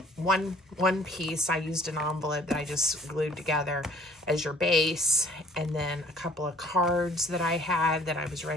one piece. I used an envelope that I just glued together as your base, and then a couple of cards that I had that I was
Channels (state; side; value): normal; both; correlation 0.55